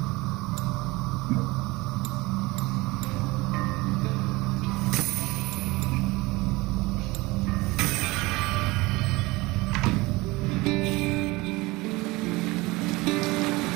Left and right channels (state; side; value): quieter; left; 22.2 dB